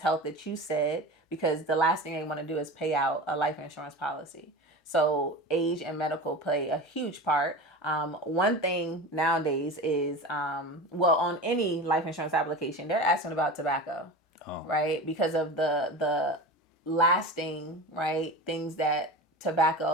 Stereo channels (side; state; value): both; normal; correlation 0.30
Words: health that you said, because the last thing they want to do is pay out a life insurance policy. So age and medical play a huge part. One thing nowadays is, on any life insurance application, they're asking about tobacco. Oh. Right? Because of the lasting, right, things that